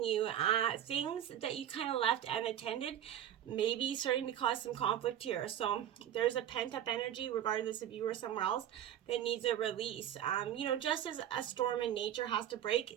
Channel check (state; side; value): quieter; left; 10.8 dB